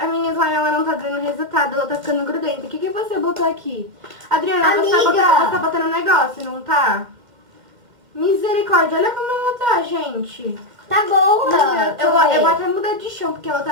minha slime ela não tá dando resultado, ela tá ficando grudenta. O que você botou aqui? Adriana, você Amiga. tá botando um negócio, não tá? Misericórdia, olha como ela tá, gente. Tá boa. Eu vou até mudar de chão, porque ela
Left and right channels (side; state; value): left; late; 2.1 ms